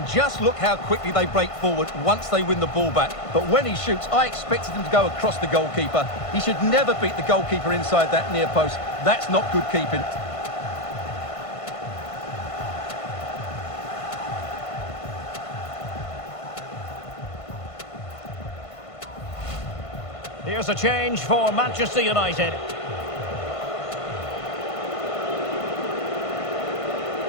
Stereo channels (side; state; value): right; late; 1.5 ms